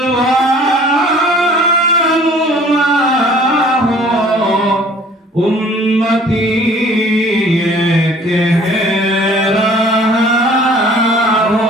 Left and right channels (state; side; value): normal; both; correlation 0.52